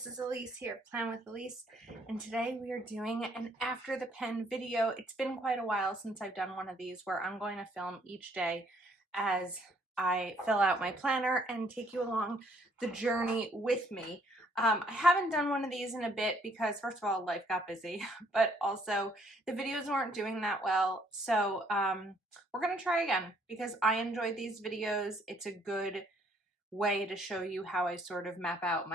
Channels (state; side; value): normal; both; correlation 0.65